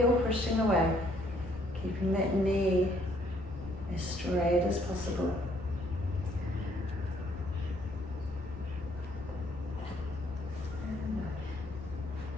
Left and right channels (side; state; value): left; noise; rumble, 16 dB below the sound